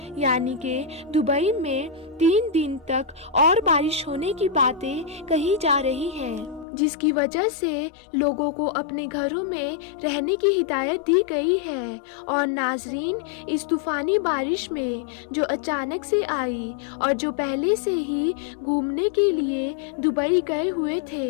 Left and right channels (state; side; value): drops out; right; at 6.7 s